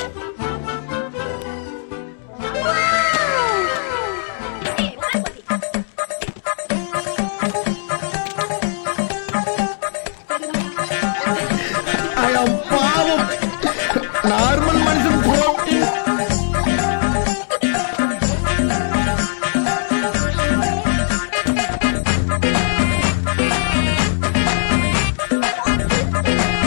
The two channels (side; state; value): right; silent; digital silence